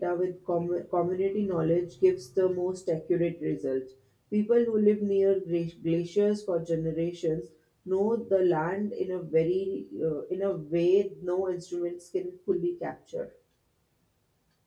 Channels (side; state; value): both; identical; correlation 1.00